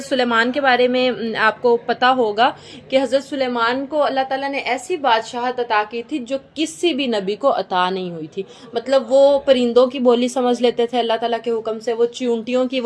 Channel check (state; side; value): identical; both; correlation 1.00